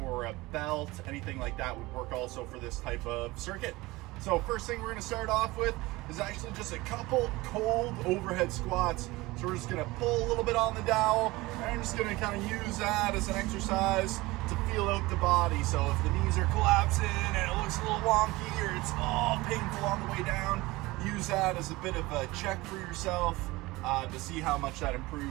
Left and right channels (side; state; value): left; quieter; 20.8 dB